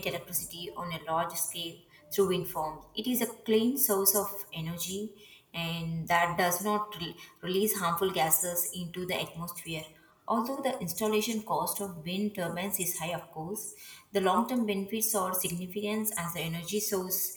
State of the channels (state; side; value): identical; both; correlation 1.00